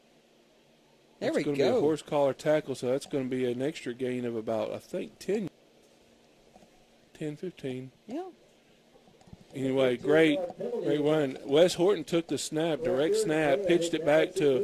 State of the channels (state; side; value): identical; both; correlation 1.00